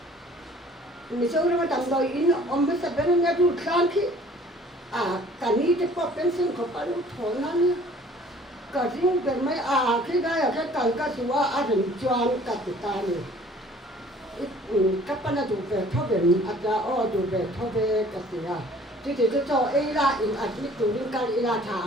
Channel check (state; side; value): normal; both; correlation 0.53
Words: mình sau đó tầm đôi in ông mới sắp đến nghe chút sáng khi cả ní thì có bên sinh có phải lúc thổi nó nhá cả riêng về mấy khi đây là cái cần cái gì á rồi choang cả tụi ta này các bạn là tụi về thâu về tụi về thâu về cái gì thì cho ấy là in admit tụi mình cái là